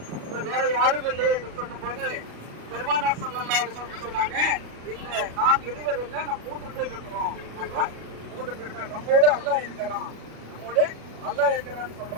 வேற யாரும் இல்லை என்று சொல்லும் போது பெருமானார் ஸல்லல்லாஹு அலைஹி வஸல்லம் சொன்னாங்க, இல்ல நாம் இருவர் இல்லை, நம்ம 3 பேர் இருக்கிறோம். நம்ம 3 பேர் இருக்கோம். நம்மோடு அல்லாஹ் இருக்கிறான், நம்மோடு அல்லாஹ் இருக்கிறான்னு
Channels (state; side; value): late; left; 37 ms